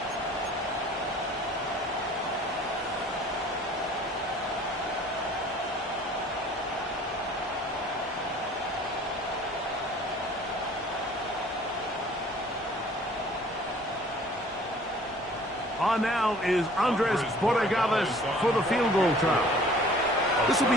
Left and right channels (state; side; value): normal; both; correlation 0.51